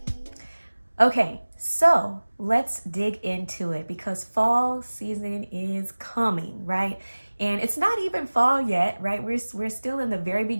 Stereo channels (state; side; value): inverted; both; correlation -1.00